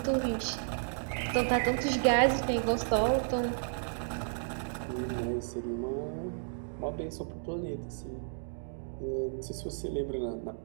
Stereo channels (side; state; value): left; silent; digital silence